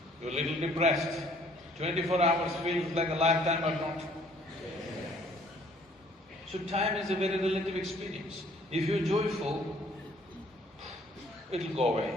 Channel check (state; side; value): normal; both; correlation 0.60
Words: You're a little depressed. 24 hours feels like a lifetime or not. So time is a very relative experience. If you're joyful, it'll go